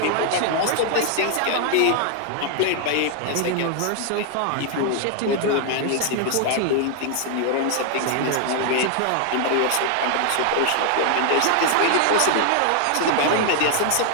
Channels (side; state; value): both; different; correlation 0.00